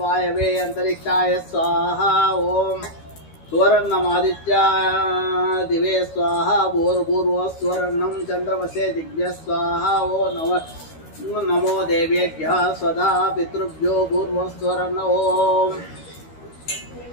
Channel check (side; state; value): right; late; 13 ms